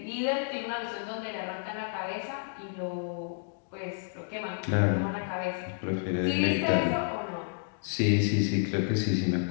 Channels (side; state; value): right; silent; digital silence